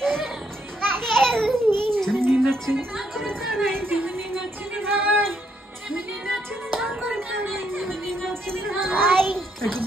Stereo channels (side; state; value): both; normal; correlation 0.75